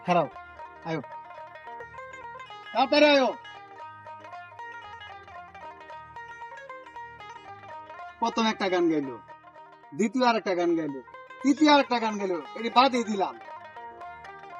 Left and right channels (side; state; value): both; identical; correlation 1.00